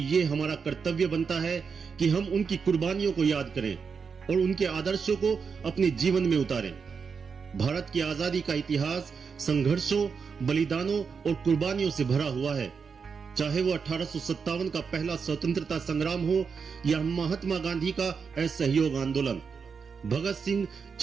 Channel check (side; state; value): left; quieter; 5.8 dB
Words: ये हमारा कर्तव्य बनता है कि हम उनकी कुर्बानियों को याद करें और उनके आदर्शों को अपने जीवन में उतारें। भारत की आजादी का इतिहास संघर्षों, बलिदानों और कुर्बानियों से भरा हुआ है। चाहे वो 1857 का पहला स्वतंत्रता संग्राम हो या महात्मा गांधी का असहयोग आंदोलन, भगत सिंह,